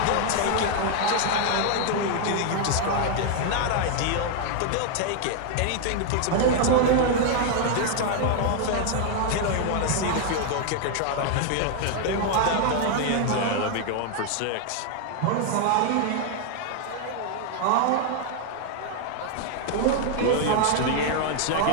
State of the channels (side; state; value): both; different; correlation 0.00